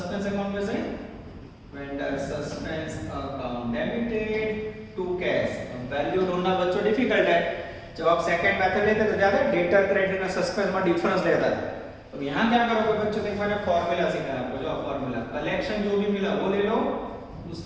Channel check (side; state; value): both; identical; correlation 1.00